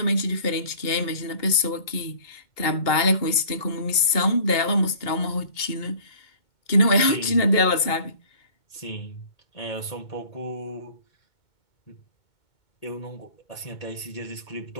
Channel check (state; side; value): late; right; 2.2 ms